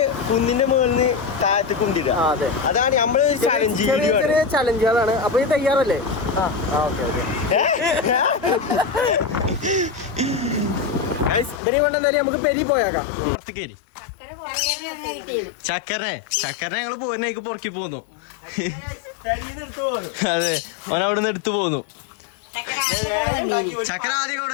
കുന്നിന്റെ മുകളിൽ താഴത്ത് കൊണ്ടിടുക. അതെ, അതാണ് നമ്മള് ചലഞ്ച് ചെറിയ ചെറിയ ചലഞ്ചുകളാണ്. അപ്പൊ ഈ തയ്യാറല്ലേ? Okay okay. ഇവരെ കൊണ്ട് എന്തായാലും നമുക്ക് പെരി പോയേക്കാം. പുറത്തേക്ക് ചക്കരനെ ഞങ്ങള് പോരുന്നേക്ക് പുറക്കി പോന്നു. അതെ, ഓൻ അവിടെ നിന്ന് എടുത്തു പോന്നു. ചക്കര ആദ്യം ഇവിടെ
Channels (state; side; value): drops out; right; at 11.6 s